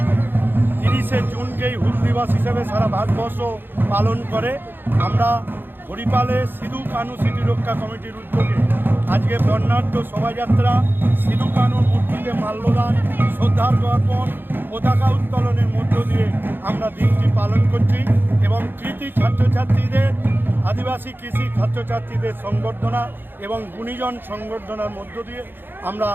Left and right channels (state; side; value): late; left; 0.098 ms